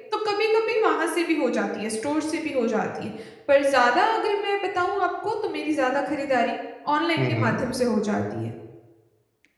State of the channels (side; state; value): both; identical; correlation 1.00